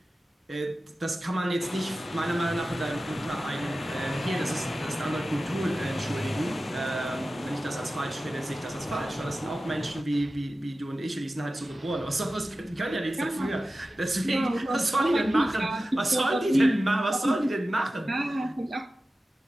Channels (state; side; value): normal; both; correlation 0.94